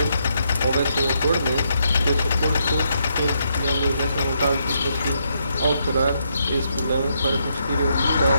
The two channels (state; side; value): inverted; both; correlation -0.77